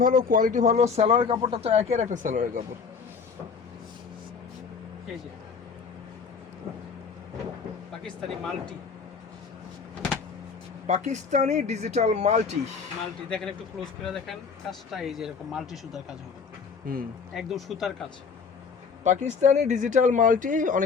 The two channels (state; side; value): quieter; right; 5.5 dB